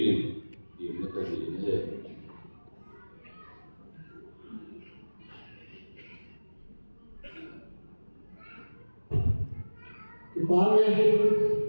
in ti na ka ni ne ki pa me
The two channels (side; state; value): both; inverted; correlation -1.00